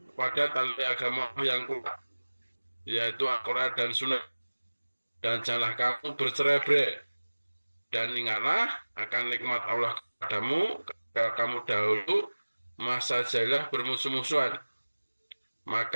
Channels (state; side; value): inverted; both; correlation -1.00